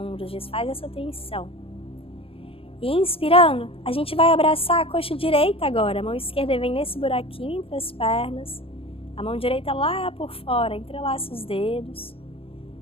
desfaz essa tensão. E inspirando, a gente vai abraçar a coxa direita agora. A mão esquerda vem nesse buraquinho entre as pernas. A mão direita lá por fora, entrelaça os dedos.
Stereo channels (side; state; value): right; late; 0.27 ms